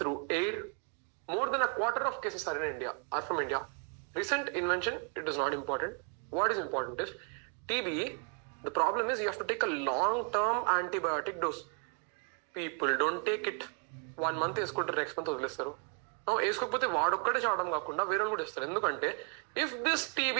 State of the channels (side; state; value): left; quieter; 38.9 dB